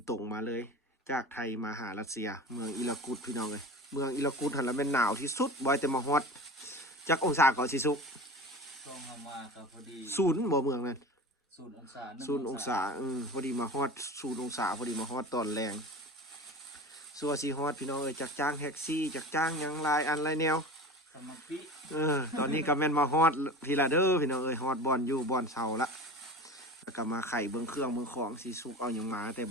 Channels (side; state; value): both; normal; correlation 0.33